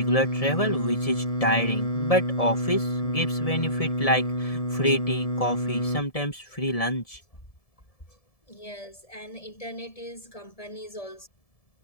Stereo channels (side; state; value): right; late; 1.7 ms